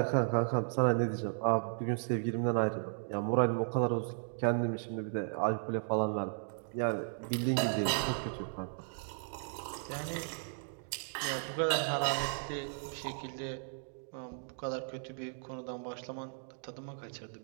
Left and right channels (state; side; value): silent; left; digital silence